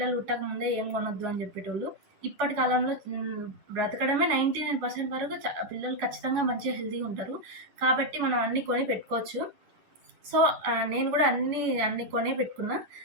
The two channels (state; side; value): late; left; 10 ms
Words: పుట్టక ముందే ఏం కొనొద్దు అని చెప్పేటోళ్ళు. ఇప్పటి కాలంలో బ్రతకడమే 99% వరకు పిల్లలు ఖచ్చితంగా మంచిగా హెల్తీగా ఉంటారు. కాబట్టి మనం అన్నీ కొని పెట్టుకోవచ్చు. సో నేను కూడా అన్నీ కొనే పెట్టుకున్నా.